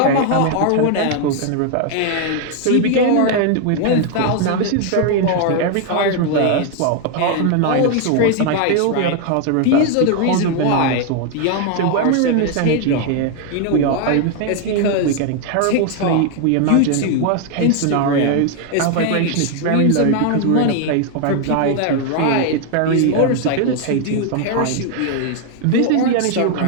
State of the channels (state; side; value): different; both; correlation 0.01